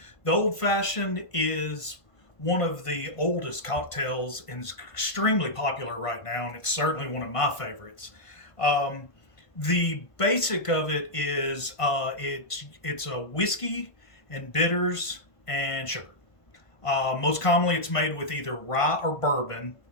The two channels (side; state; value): right; late; 1.5 ms